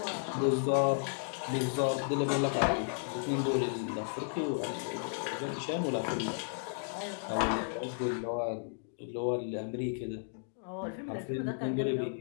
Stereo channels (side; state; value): right; silent; digital silence